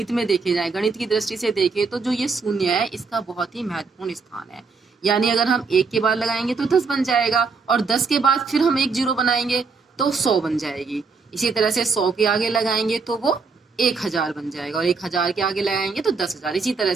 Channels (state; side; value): quieter; left; 4.7 dB